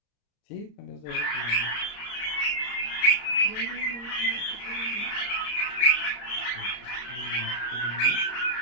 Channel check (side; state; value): right; late; 34 ms